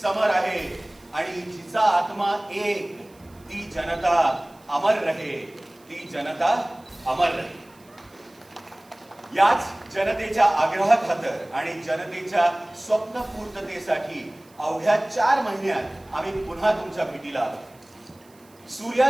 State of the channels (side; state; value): right; noise; hiss, 29 dB below the sound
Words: आहे आणि जिचा आत्मा एक, ती जनता अमर रहे, ती जनता अमर रहे. याच जनतेच्या आग्रहाखातर आणि जनतेच्या स्वप्नपूर्ततेसाठी अवघ्या 4 महिन्यात आम्ही पुन्हा तुमच्या भेटीला आलो.